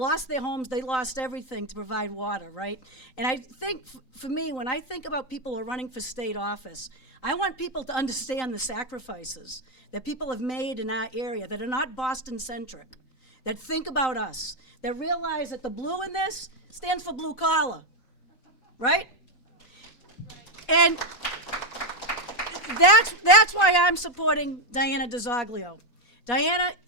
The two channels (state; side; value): late; right; 3.9 ms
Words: their homes, they lost everything to provide water, right? And I think, for me, when I think about people who are running for state office, I want people to understand the sacrifices that people have made in our area that are not Boston-centric, that think about us, that realize that the blue in this stands for blue collar, right? And that's why I'm supporting Diana DiZoglio. Diana